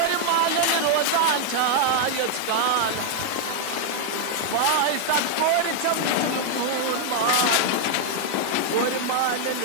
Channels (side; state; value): both; different; correlation 0.00